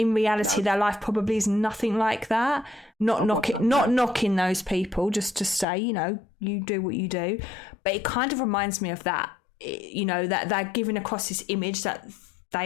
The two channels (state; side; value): drops out; right; at 5.7 s